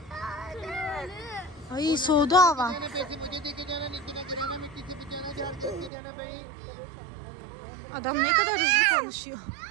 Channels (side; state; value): left; drops out; at 5.9 s